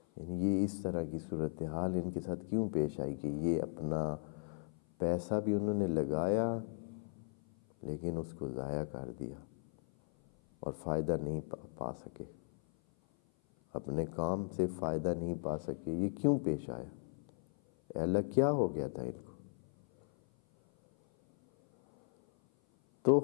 یعنی یہ اس طرح کی صورتحال ان کے ساتھ کیوں پیش آئی کہ یہ اپنا پیسہ بھی انہوں نے لگایا لیکن اس کو ضائع کر دیا اور فائدہ نہیں پا سکے، اپنے کام سے فائدہ نہیں پا سکے. یہ کیوں پیش آیا؟ اے اللہ کیا ہو گیا تھا ان کو؟ تو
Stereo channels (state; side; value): silent; right; 53 dB below the other